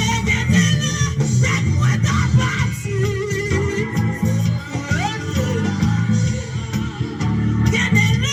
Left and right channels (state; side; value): identical; both; correlation 1.00